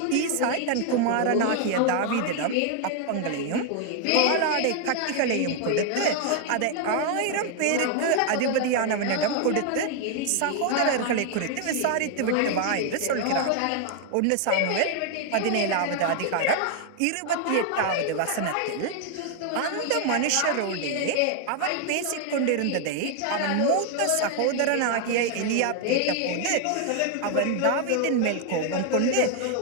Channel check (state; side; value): different; both; correlation 0.00